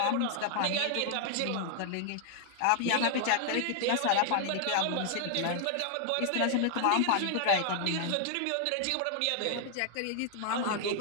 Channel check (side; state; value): both; different; correlation 0.00